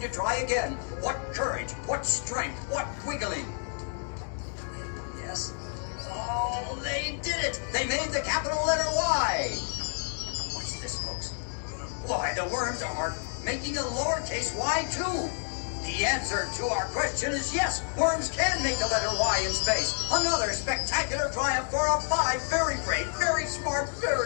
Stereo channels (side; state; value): right; silent; 58 dB below the other